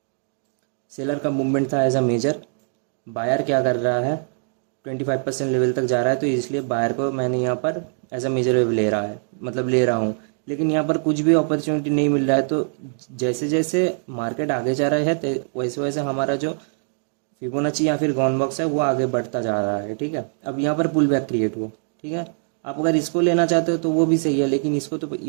सेलर का मूवमेंट था एज अ मेजर, बायर क्या कर रहा है, 25% लेवल तक जा रहा है, तो इसलिए बायर को मैंने यहाँ पर एज अ मेजर वेव ले रहा है, मतलब ले रहा हूँ। लेकिन यहाँ पर कुछ भी अपॉर्चुनिटी नहीं मिल रहा है, तो जैसे जैसे मार्केट आगे जा रहा है वैसे वैसे हमारा जो फिबोनाची या फिर गॉन बॉक्स है वो आगे बढ़ता जा रहा है, ठीक है। अब यहाँ पर पुल बैक क्रिएट हुआ, ठीक है। आप अगर इसको लेना चाहते हो तो वो भी सही है, लेकिन इसको तो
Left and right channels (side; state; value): left; silent; 63 dB below the other